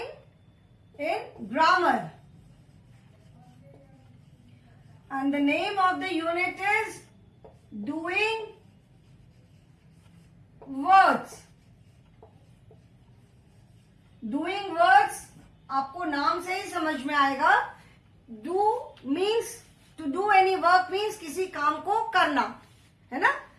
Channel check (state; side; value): identical; both; correlation 1.00